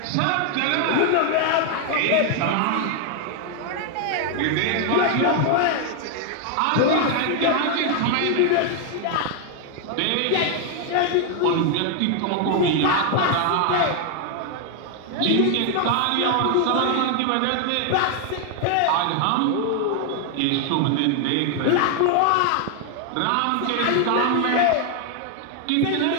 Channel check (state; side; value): different; both; correlation 0.00